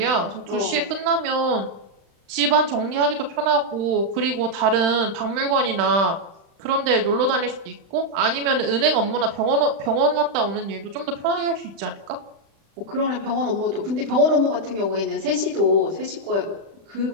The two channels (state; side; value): late; left; 35 ms